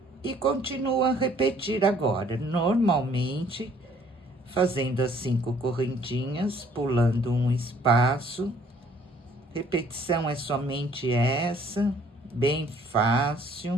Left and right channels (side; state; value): both; normal; correlation 0.59